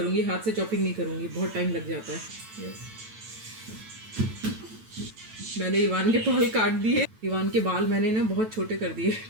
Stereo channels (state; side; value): late; left; 9.1 ms